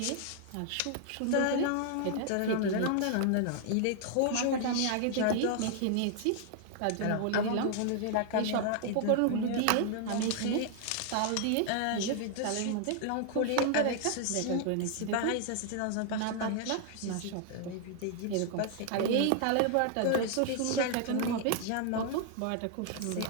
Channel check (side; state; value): both; different; correlation 0.00